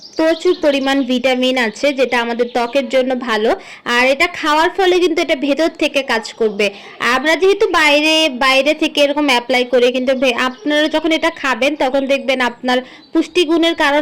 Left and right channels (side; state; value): both; identical; correlation 1.00